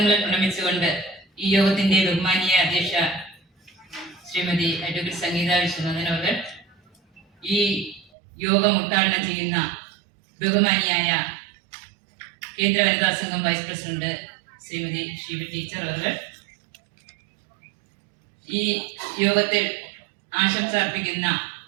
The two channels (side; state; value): left; drops out; at 8.1 s